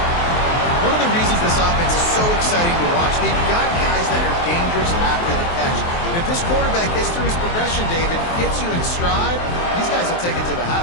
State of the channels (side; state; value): right; late; 23 ms